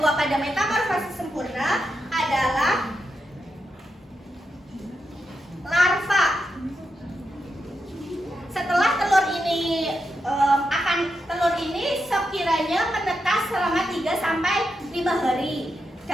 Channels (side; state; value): both; normal; correlation 0.86